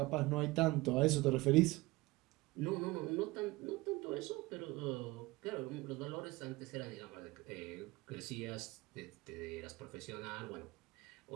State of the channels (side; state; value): left; quieter; 21.2 dB